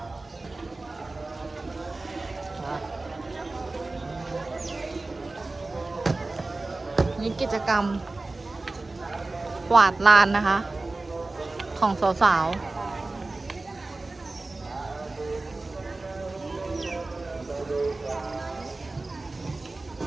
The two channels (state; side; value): quieter; left; 3.2 dB